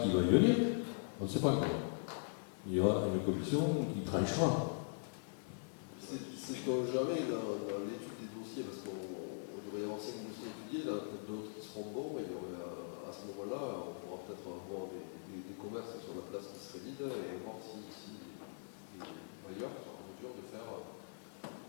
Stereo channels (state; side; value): silent; right; digital silence